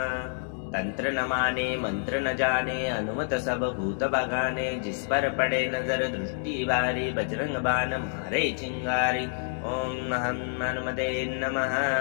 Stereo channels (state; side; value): silent; right; digital silence